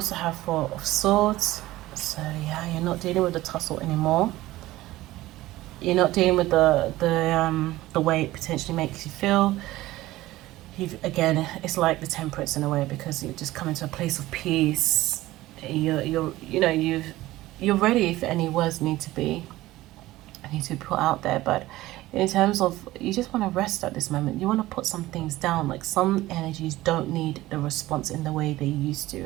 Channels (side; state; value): left; quieter; 17.0 dB